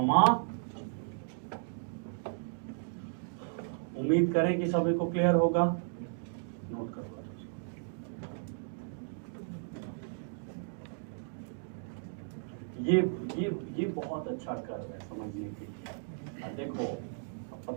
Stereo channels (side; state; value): left; silent; digital silence